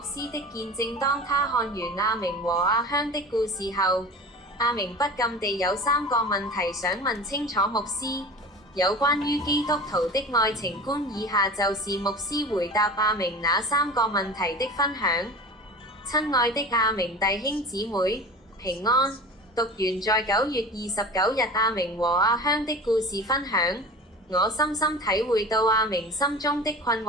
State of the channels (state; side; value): normal; both; correlation 0.36